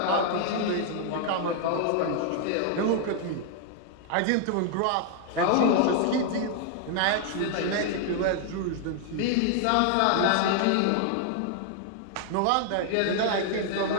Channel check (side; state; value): both; different; correlation 0.00